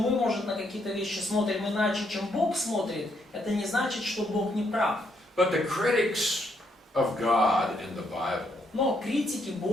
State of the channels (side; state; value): both; normal; correlation 0.74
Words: может, на какие-то вещи смотрим иначе, чем Бог смотрит, это не значит, что Бог не прав. But the critics of God in the Bible, Но критики